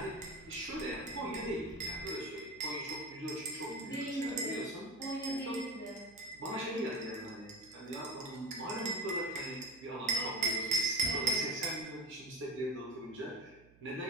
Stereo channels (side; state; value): right; noise; hum, 25 dB below the sound